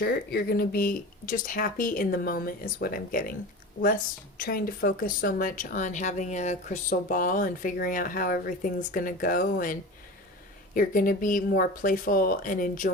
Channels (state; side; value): normal; both; correlation 0.32